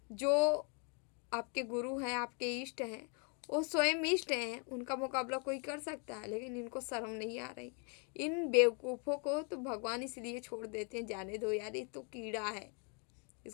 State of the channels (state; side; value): quieter; right; 38.0 dB